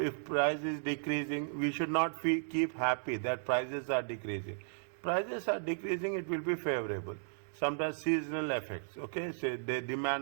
price is decreasing, we should not keep happy that prices are decreasing. Prices are decreasing, it will be favorable. Sometimes seasonal effects, okay, say the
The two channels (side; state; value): left; silent; digital silence